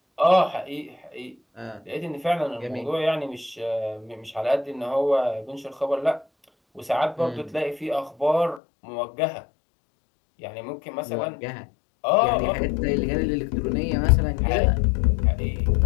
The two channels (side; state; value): right; drops out; at 8.6 s